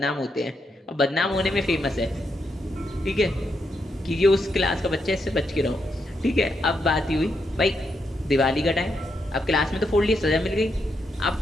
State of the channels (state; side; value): normal; both; correlation 0.81